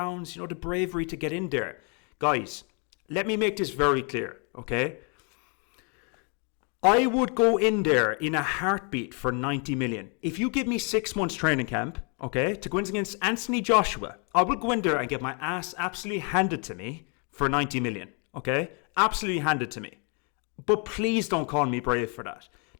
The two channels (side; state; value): right; quieter; 36.7 dB